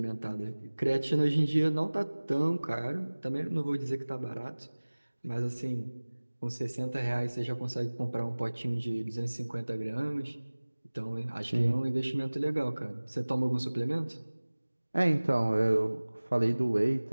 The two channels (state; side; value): inverted; both; correlation -1.00